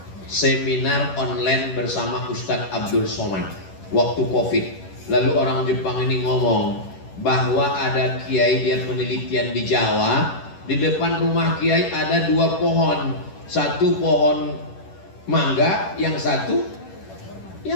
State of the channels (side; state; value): right; late; 11 ms